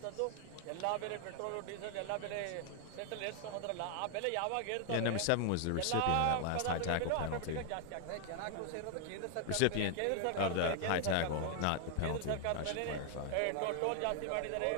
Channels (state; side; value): different; both; correlation 0.00